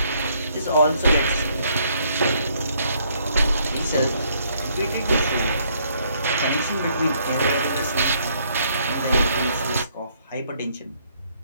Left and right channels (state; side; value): inverted; both; correlation -0.68